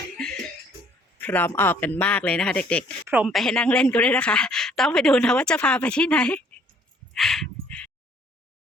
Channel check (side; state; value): both; normal; correlation 0.60